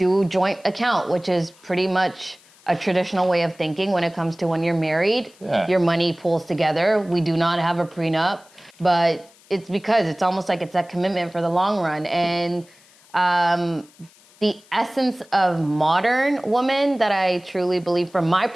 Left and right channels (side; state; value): left; noise; hiss, 28 dB below the sound